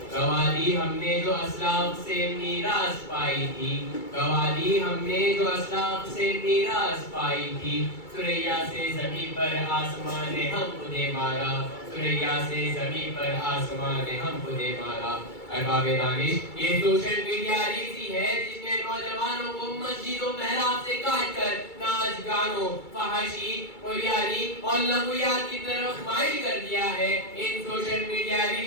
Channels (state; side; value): late; right; 2.3 ms